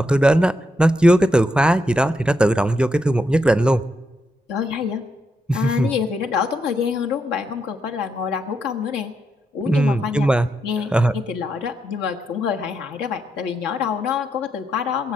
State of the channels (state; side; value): normal; both; correlation 0.81